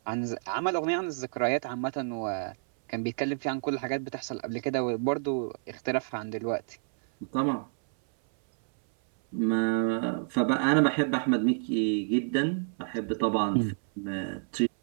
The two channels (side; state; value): left; silent; 59 dB below the other